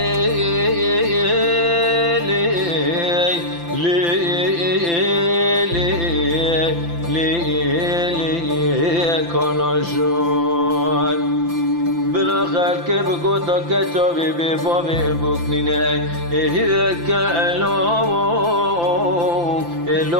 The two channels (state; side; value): late; left; 5.9 ms